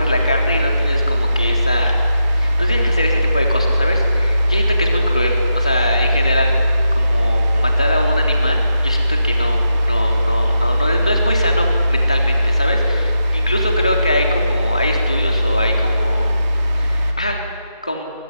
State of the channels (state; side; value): inverted; both; correlation -0.85